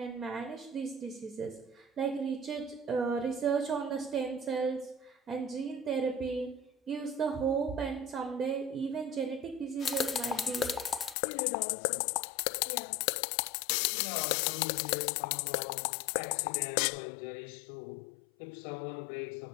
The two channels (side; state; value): right; drops out; at 11.2 s